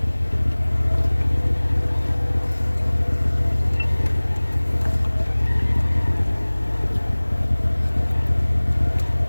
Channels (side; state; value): both; inverted; correlation -1.00